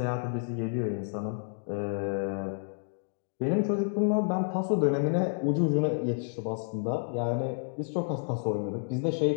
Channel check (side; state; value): right; silent; digital silence